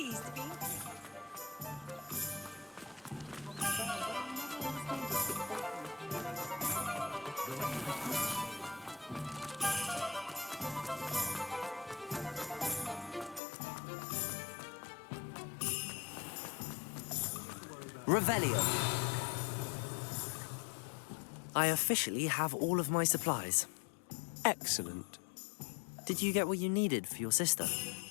to be... Revelio. I officially have all of my supplies. Excellent. Did you get what you needed for your sister?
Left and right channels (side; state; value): right; drops out; at 13.4 s